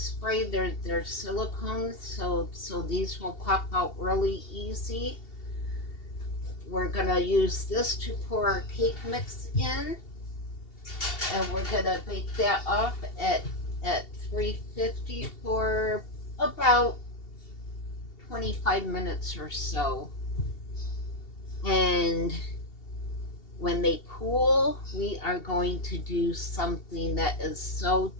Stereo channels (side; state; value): right; late; 2.7 ms